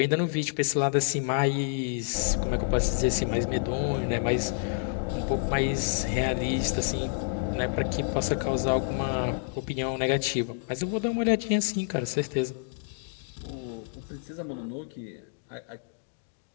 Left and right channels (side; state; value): right; silent; digital silence